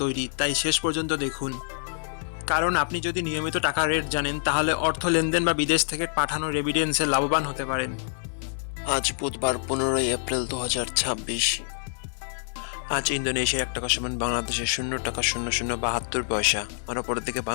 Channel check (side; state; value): right; silent; 57 dB below the other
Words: তৈরি, তাই শেষ পর্যন্ত দেখুন। কারণ আপনি যদি নিয়মিত টাকার রেট জানেন, তাহলে অর্থ লেনদেন বা বিদেশ থেকে পাঠানো রেমিটেন্সে লাভবান হতে পারেন। আজ বুধবার 15ই এপ্রিল 2026। আজ ইন্দোনেশিয়ার 1 টাকা সমান বাংলাদেশের 0.0072 পয়সা, আর অপরের দিকে